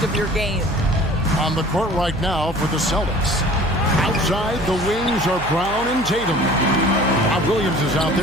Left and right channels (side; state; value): right; noise; hum, 12 dB below the sound